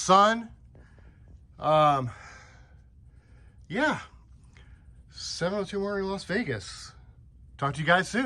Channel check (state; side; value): identical; both; correlation 1.00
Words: Yeah. 702 Motoring, Las Vegas. Talk to you guys